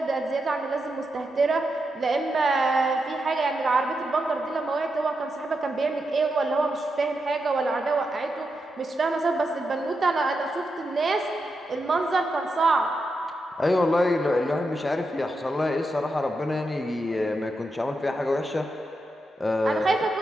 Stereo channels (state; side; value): normal; both; correlation 0.86